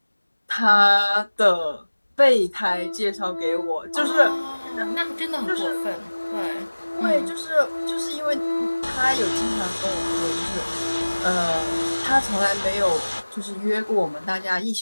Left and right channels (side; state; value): both; inverted; correlation -1.00